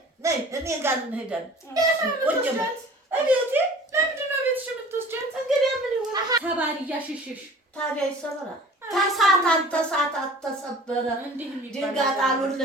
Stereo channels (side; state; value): both; normal; correlation 0.45